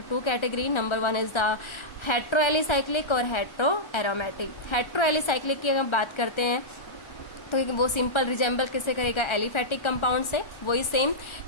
2 category. Number 1 is the heteroalicyclic और heteroaromatic. heteroalicyclic की अगर हम बात करते हैं तो वो सिंपल रिजेंबल किससे करेगा? एलिफैटिक कंपाउंड से। वही सेम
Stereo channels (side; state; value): right; late; 1.3 ms